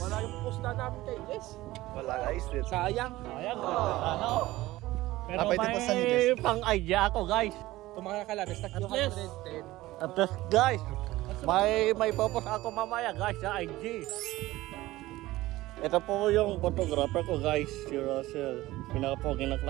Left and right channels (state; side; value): quieter; left; 17.5 dB